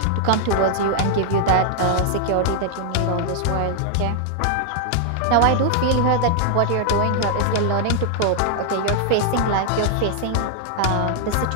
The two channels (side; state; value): both; different; correlation 0.00